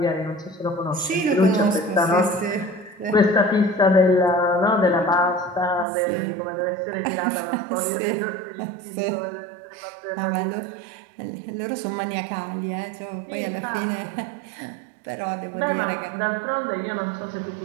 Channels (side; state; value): left; drops out; at 5.9 s